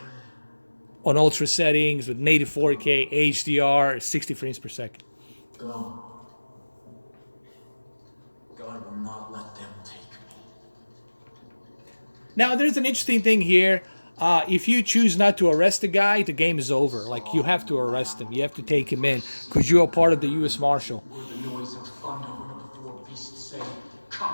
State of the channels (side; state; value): both; inverted; correlation -1.00